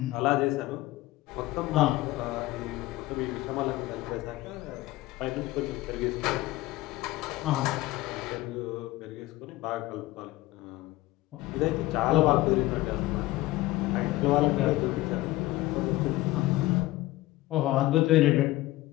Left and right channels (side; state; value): right; quieter; 17.9 dB